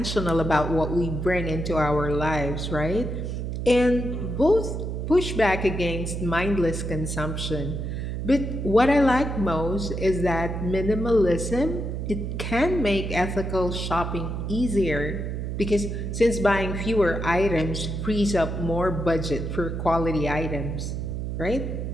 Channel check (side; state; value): right; noise; hum, 4 dB below the sound